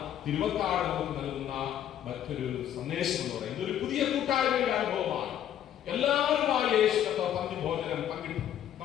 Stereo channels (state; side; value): quieter; right; 10.7 dB